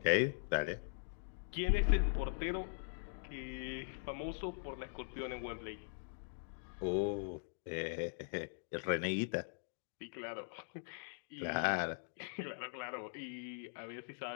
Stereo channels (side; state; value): right; silent; digital silence